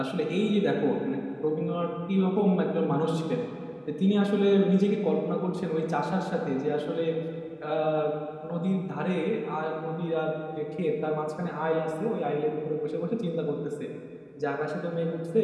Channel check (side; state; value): both; identical; correlation 1.00